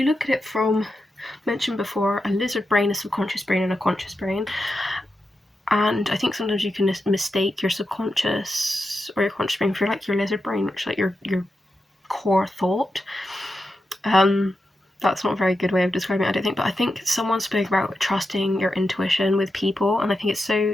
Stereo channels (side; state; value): both; normal; correlation 0.88